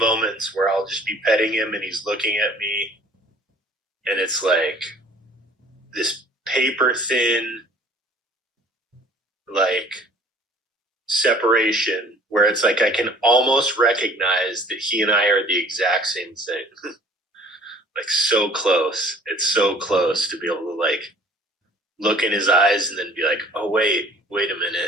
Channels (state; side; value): normal; both; correlation 0.52